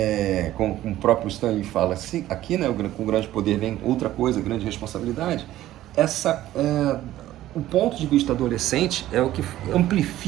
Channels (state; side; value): quieter; left; 14.2 dB